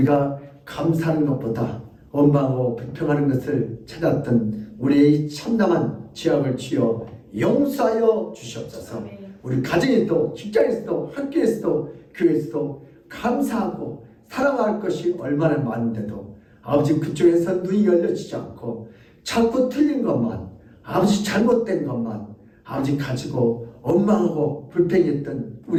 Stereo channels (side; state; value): both; identical; correlation 1.00